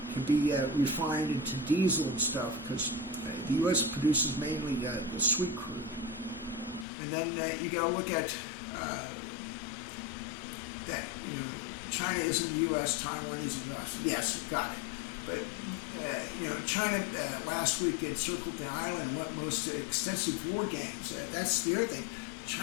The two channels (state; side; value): drops out; right; at 6.9 s